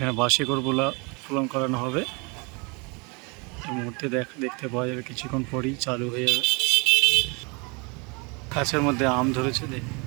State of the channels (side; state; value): left; quieter; 30.1 dB